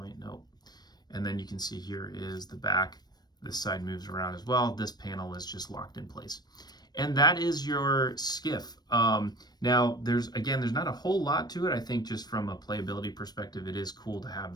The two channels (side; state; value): right; late; 0.19 ms